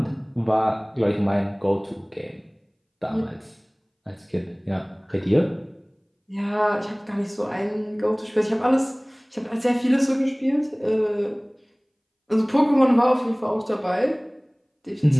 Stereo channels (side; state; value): both; identical; correlation 1.00